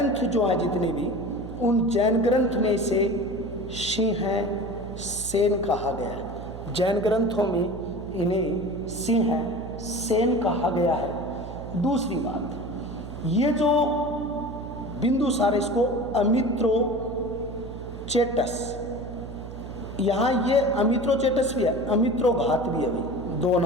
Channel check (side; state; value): right; noise; hum, 11 dB below the sound